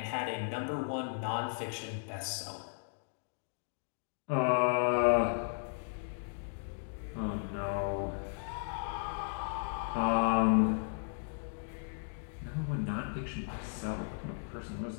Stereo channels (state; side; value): silent; right; digital silence